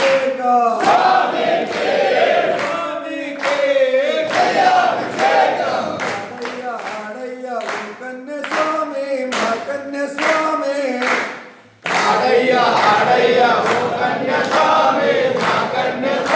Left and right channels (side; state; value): both; identical; correlation 1.00